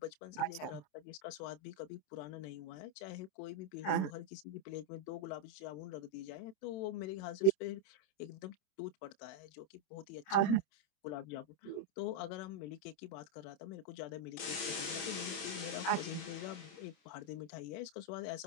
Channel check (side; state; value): right; late; 27 ms